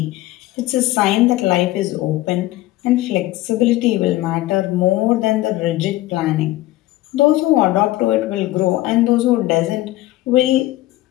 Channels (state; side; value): quieter; right; 16.8 dB